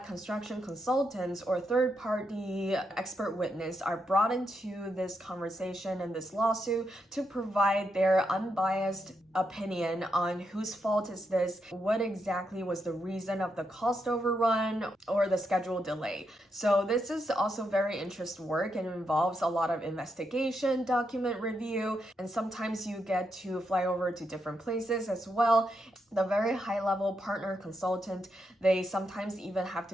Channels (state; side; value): normal; both; correlation 0.82